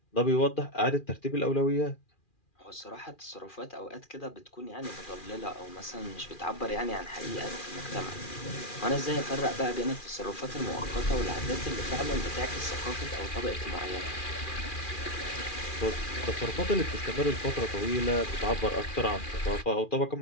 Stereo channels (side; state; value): right; late; 2.4 ms